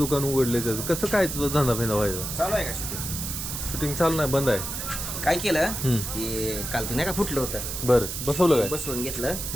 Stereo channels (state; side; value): noise; right; hiss, 5 dB below the sound